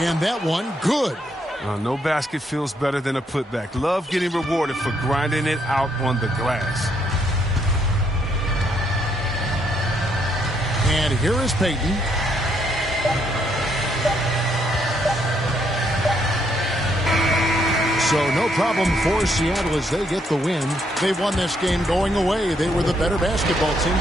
that one good. No basket feels better than a putback. Love getting rewarded for grinding it out on the glass. And here is Payton. So no problem for Seattle as they get the win. They won this game going away. They were the better basketball team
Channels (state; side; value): normal; both; correlation 0.73